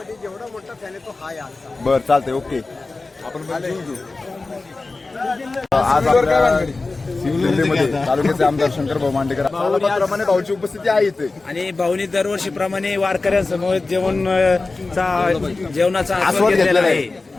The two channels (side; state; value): right; quieter; 3.5 dB